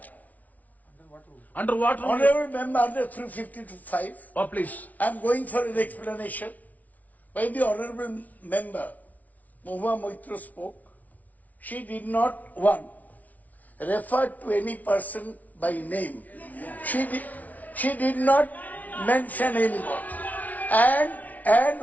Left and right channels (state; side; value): late; right; 0.073 ms